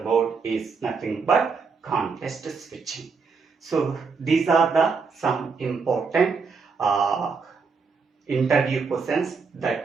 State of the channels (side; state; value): left; quieter; 5.0 dB